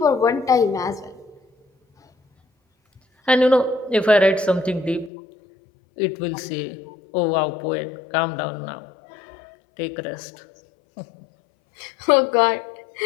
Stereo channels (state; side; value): drops out; right; at 5.1 s